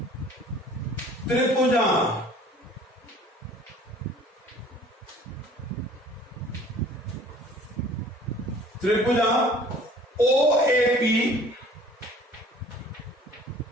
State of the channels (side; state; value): both; normal; correlation 0.50